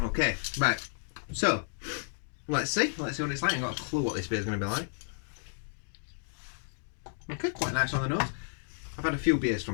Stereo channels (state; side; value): silent; right; digital silence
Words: right, so let's see what it's like. I've got a clue what this beer is going to be like. Okay, quite nice on the nose. I've had a few beers